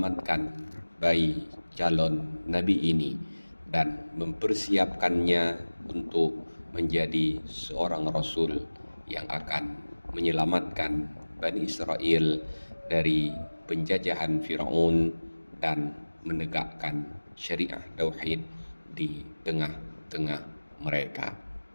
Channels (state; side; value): inverted; both; correlation -1.00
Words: bayi calon nabi ini dan mempersiapkannya untuk menjadi seorang rasul yang akan menyelamatkan Bani Israel dari penjajahan Firaun dan menegakkan syariah tauhid di tengah-tengah mereka.